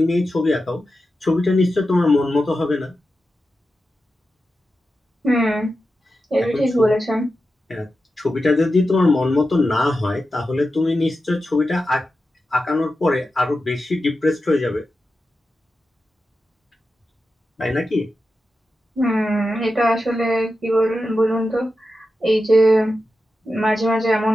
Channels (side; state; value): both; normal; correlation 0.91